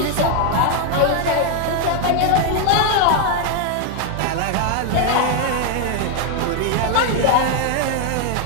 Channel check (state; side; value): different; both; correlation 0.01